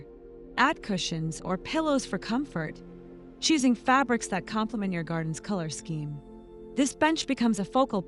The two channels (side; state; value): both; identical; correlation 1.00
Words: Add cushions or pillows for comfort, choosing fabrics that complement your garden's color scheme. This bench becomes a focal